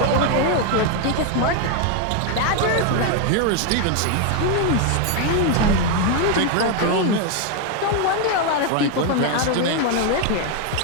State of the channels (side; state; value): both; different; correlation 0.01